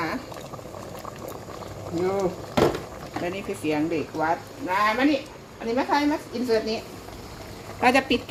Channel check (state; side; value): identical; both; correlation 1.00